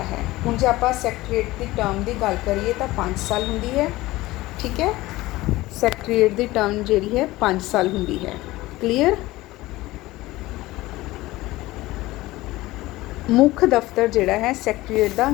ਹੈ। ਹੁਣ ਜੇ ਆਪਾਂ ਸੈਕਟਰੀਏਟ ਦੀ ਟਰਮ ਦੀ ਗੱਲ ਕਰੀਏ ਤਾਂ 5 ਸਾਲ ਹੁੰਦੀ ਹੈ। ਠੀਕ ਹੈ, ਸੈਕਟਰੀਏਟ ਦੀ ਟਰਮ ਜਿਹੜੀ ਹੈ 5 ਸਾਲ ਹੁੰਦੀ ਹੈ। ਕਲੀਅਰ। ਮੁੱਖ ਦਫ਼ਤਰ ਜਿਹੜਾ ਹੈ ਸੈਕਟਰੀਏਟ ਦਾ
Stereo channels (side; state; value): right; quieter; 18.5 dB